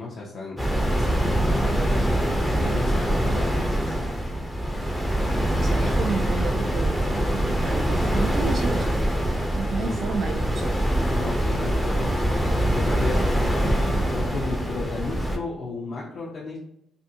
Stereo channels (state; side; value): normal; both; correlation 0.91